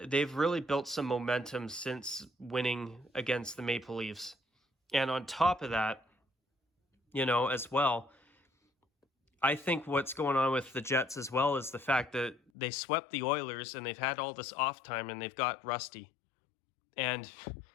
they've really built some momentum since winning against the Maple Leafs. And on top of that, as well, I think what's going on with the Jets as well is the fact that they swept the Oilers and they've had all this off time and they've got rusty. And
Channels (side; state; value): right; drops out; at 12.5 s